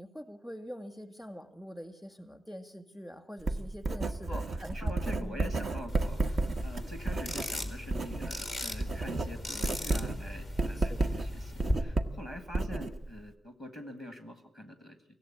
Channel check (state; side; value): normal; both; correlation 0.89